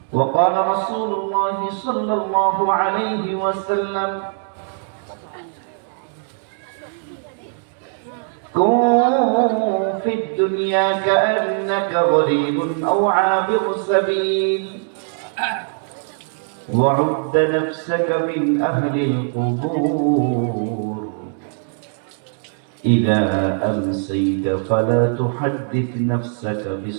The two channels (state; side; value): silent; left; 62 dB below the other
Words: وقال رسول الله صلى الله عليه وسلم كن في الدنيا كأنك غريب أو عابر سبيل وعد نفسك من أهل القبور إذا أمسيت فلا تحدث نفسك